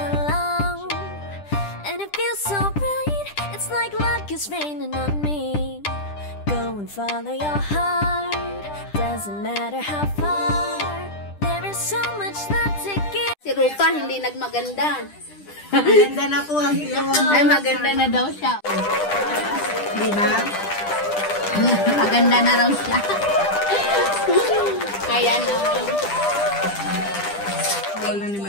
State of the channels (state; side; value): late; right; 10 ms